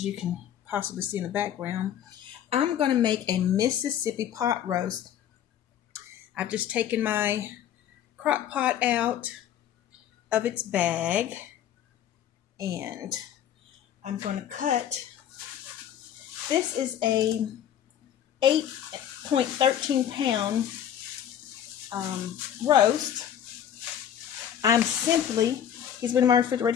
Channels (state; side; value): quieter; right; 9.9 dB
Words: you can possibly see in the background. I'm going to make a Mississippi pot roast. I've just taken my crock pot out of its bag, and I'm going to cut. This is a 8.13 pound roast. He's been in my